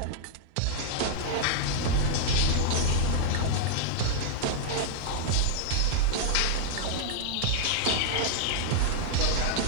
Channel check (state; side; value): different; both; correlation -0.01